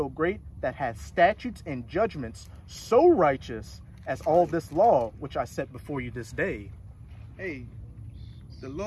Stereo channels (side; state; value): both; identical; correlation 1.00